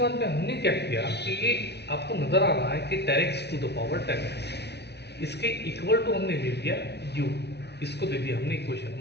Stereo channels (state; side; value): late; right; 0.49 ms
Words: में हमने क्या किया कि ये आपको नजर आ रहा है कि 10x to the power 10x, इसके इक्वल टू हमने ले लिया u, इसको दे दिया हमने इक्वेशन